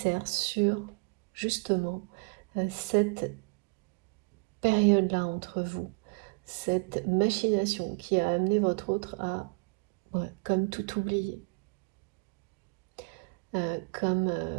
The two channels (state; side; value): quieter; left; 33.7 dB